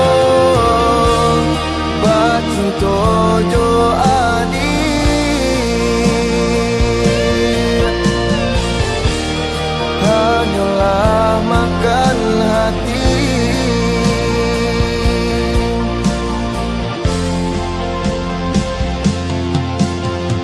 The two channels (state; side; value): identical; both; correlation 1.00